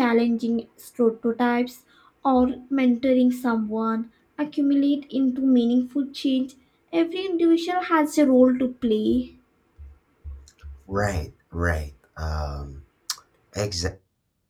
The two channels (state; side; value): identical; both; correlation 1.00